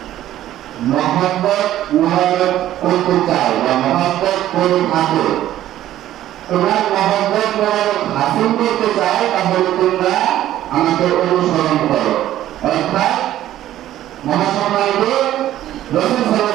মহব্বত করতে চাও বা মহব্বত করে থাকো তোমার মহব্বত হাসিল করতে চাও তাহলে তোমরা আমাকে অনুসরণ করো অর্থাৎ মহাসম্মানিত রাসূল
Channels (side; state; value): left; quieter; 13.1 dB